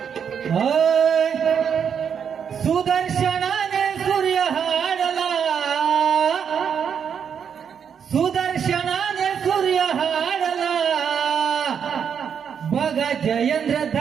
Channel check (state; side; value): quieter; left; 7.5 dB